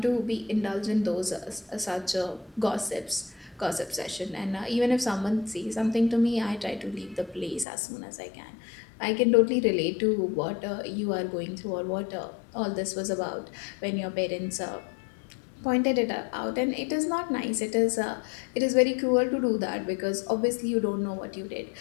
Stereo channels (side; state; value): right; drops out; at 7.7 s